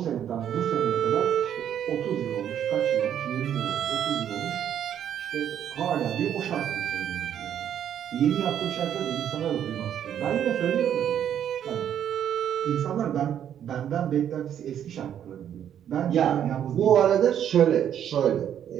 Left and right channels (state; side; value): quieter; left; 9.7 dB